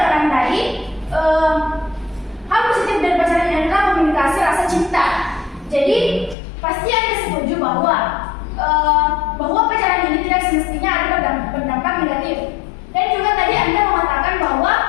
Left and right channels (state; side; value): drops out; right; at 6.4 s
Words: tadi, hal positif dari pacaran adalah komunikasi rasa cinta. Jadi pasti Anda setuju bahwa pacaran ini tidak semestinya ada berdampak negatif. Dan juga tadi Anda mengatakan bahwa